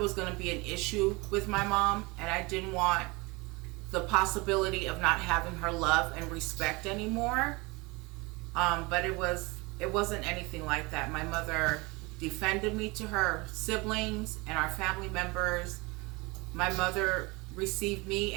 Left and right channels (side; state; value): left; quieter; 25.2 dB